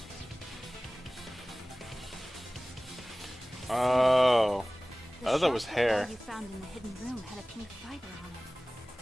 Oh. The I thought that was shot put hair. ball you found in the hidden room had a pink fiber on it.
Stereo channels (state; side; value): normal; both; correlation 0.98